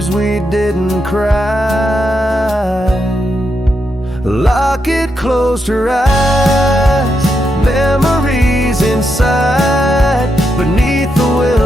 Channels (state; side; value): normal; both; correlation 0.83